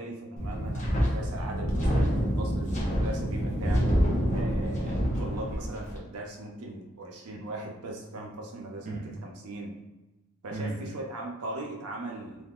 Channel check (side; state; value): both; normal; correlation 0.81